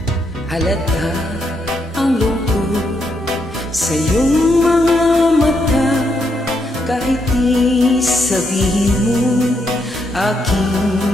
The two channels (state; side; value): normal; both; correlation 0.78